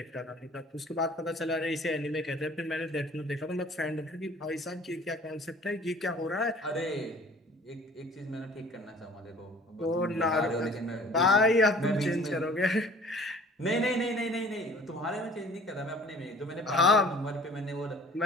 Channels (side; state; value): both; normal; correlation 0.50